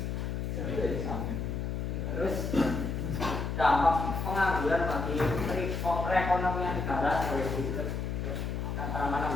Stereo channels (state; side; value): noise; left; hum, 2 dB below the sound